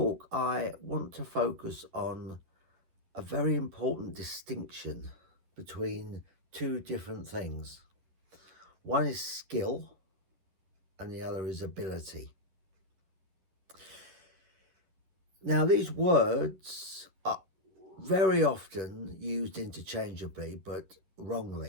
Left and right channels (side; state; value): left; late; 11 ms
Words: I want to focus on a very important distinction between two different things. One is skill and the other is ability. Now, these words are very often used interchangeably, but